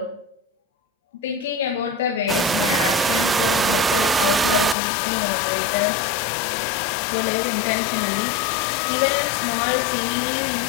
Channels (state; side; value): drops out; right; at 4.8 s